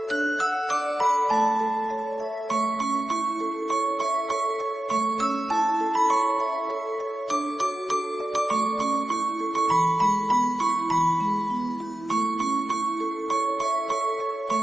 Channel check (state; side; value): normal; both; correlation 0.93